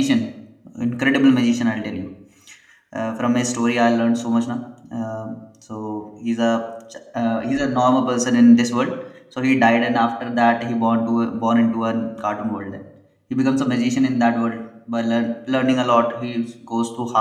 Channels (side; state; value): both; identical; correlation 1.00